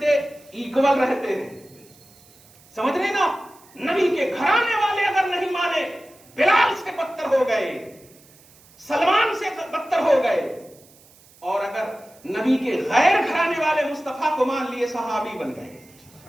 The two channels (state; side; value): noise; right; hiss, 27 dB below the sound